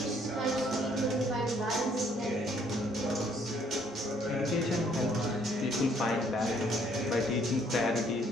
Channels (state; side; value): normal; both; correlation 0.65